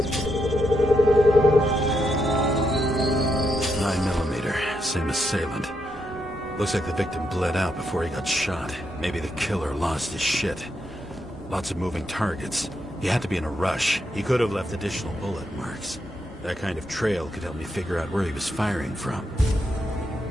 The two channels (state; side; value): normal; both; correlation 0.81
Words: 9mm, same assailant. Looks like the victim bled out before he got shot. Maybe the killer lost his shit. Lots of moving targets. He had to be in a rush. He could have left additional bullet marks. That kind of trail could help me figure out where he was firing from.